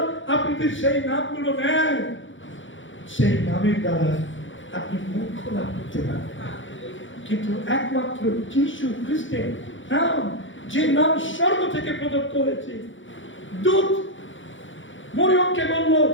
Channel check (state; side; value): late; right; 0.56 ms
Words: আপনি যদি সেই নামগুলো নেন, সেই নামের দ্বারা আপনি মুক্তি লাভ করতে পারবেন। কিন্তু একমাত্র যিশু খ্রিস্টের নাম, যে নাম স্বর্গ থেকে প্রদত্ত হয়েছে। দূত মরিয়মকে বলল